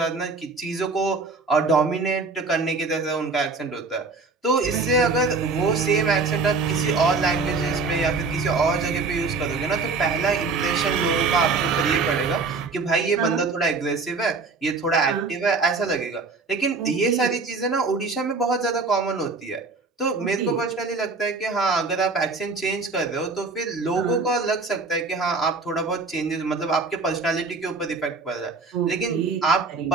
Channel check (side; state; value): left; quieter; 4.1 dB